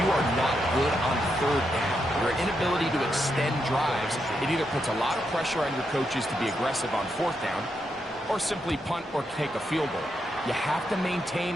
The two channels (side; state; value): both; normal; correlation 0.82